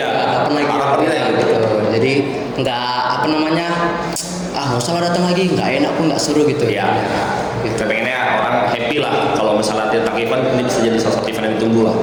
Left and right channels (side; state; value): both; identical; correlation 1.00